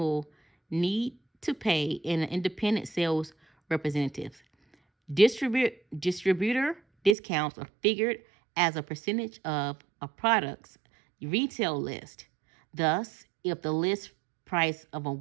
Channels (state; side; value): drops out; left; at 7.2 s